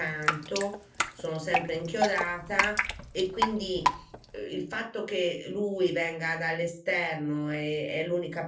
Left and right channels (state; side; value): identical; both; correlation 1.00